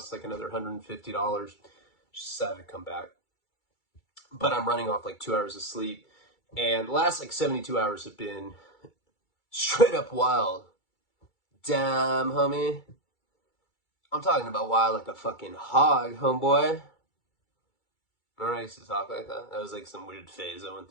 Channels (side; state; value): right; late; 2.3 ms